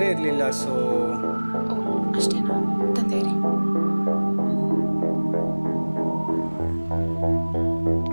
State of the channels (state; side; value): inverted; both; correlation -1.00